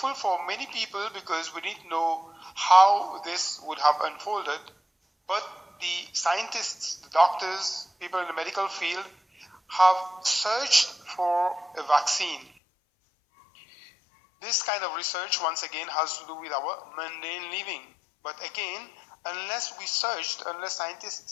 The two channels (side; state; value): right; drops out; at 12.5 s